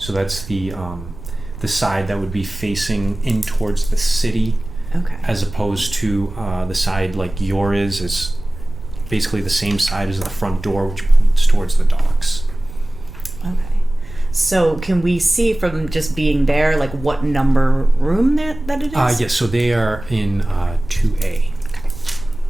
that's the side that would be facing in towards the city. Okay. As opposed to the side like yours is basically the same side as the front door, which points towards the docks. Okay. So can we see from just being there, like what number room that it is? Yes, so they are in 2A.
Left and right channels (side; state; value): right; noise; rumble, 13 dB below the sound